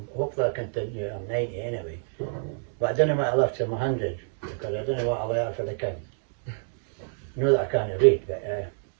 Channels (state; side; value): silent; left; digital silence